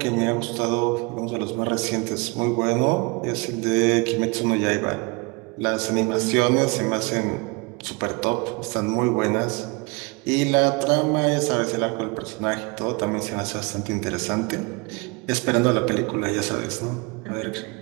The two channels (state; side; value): quieter; left; 28.3 dB